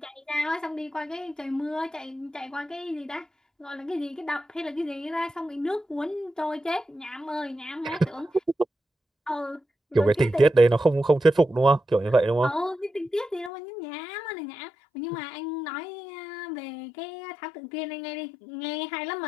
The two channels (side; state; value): right; drops out; at 13.5 s